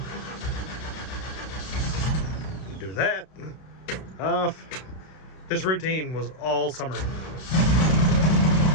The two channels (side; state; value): right; late; 32 ms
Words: Do that. Off. This routine was all summer.